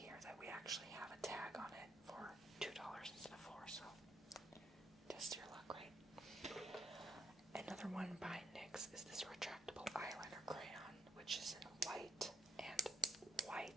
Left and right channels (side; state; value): both; normal; correlation 0.71